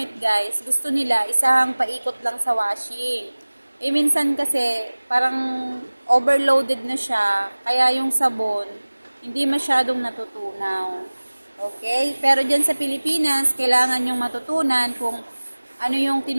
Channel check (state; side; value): inverted; both; correlation -1.00